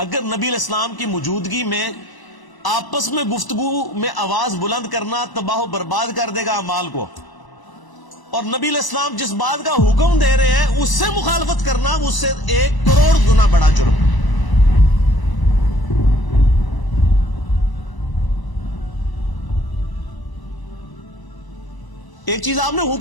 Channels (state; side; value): late; right; 1.0 ms